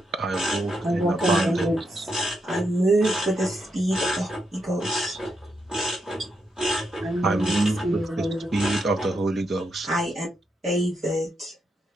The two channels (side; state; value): both; normal; correlation 0.82